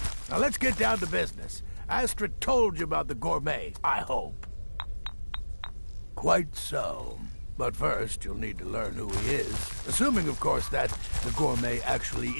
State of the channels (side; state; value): both; inverted; correlation -1.00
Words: Now let's get down to business. Astrid told you about the Gourmet, I hope. Quite so. But first, you'll need to learn who he is. Assuming, of course, that the gourmet actually